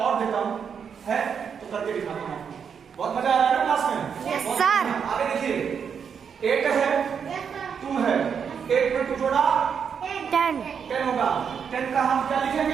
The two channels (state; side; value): quieter; left; 7.0 dB